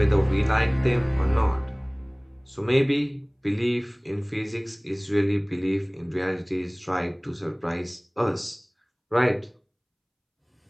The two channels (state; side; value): identical; both; correlation 1.00